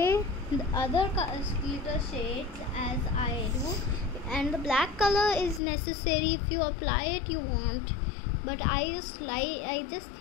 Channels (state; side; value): drops out; right; at 5.6 s